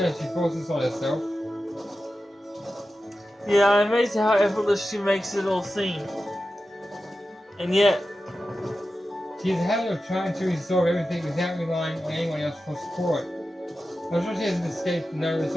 she forces on herself. Yeah, I'm amazed at how effortless she makes it all seem. And yet, She has a habit of trying to resolve everything without relying on anyone else for support. I'm sure she hasn't escaped the notice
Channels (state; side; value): normal; both; correlation 0.93